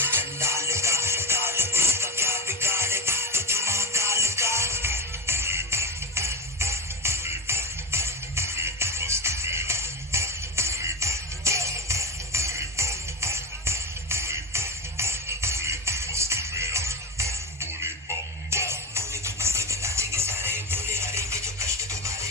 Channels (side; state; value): both; normal; correlation 0.18